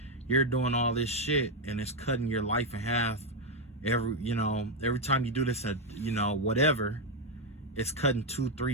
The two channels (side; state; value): both; normal; correlation 0.04